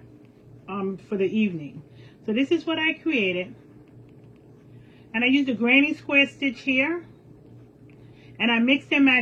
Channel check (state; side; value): identical; both; correlation 1.00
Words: for the evening. So this is what I created, and I used a granny square stitch here, and I mixed and